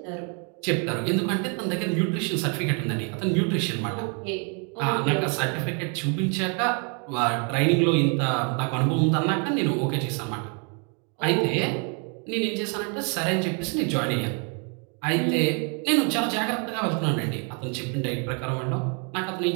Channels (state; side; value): quieter; left; 37.4 dB